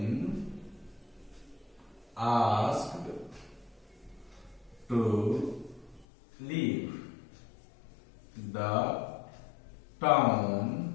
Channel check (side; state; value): right; drops out; at 6.1 s